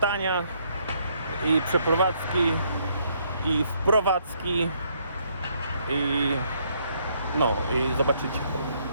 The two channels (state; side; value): inverted; both; correlation -0.70